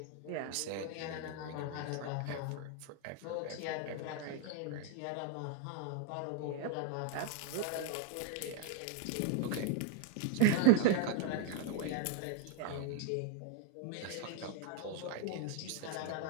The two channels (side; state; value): both; different; correlation 0.00